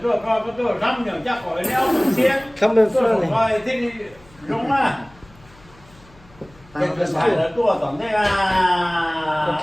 tôi coi có tôi răm nhờ chắc khỏi đeo thường xuyên. Come in Tôi front. không coi thích đúng à. Cái phải là tôi tổng thế là.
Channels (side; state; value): left; noise; hum, 26 dB below the sound